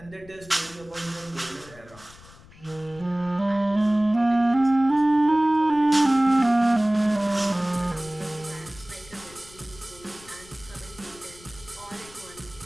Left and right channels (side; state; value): left; noise; rumble, 22 dB below the sound